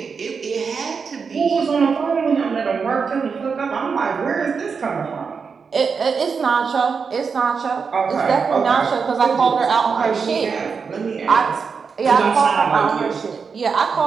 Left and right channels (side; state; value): left; quieter; 5.6 dB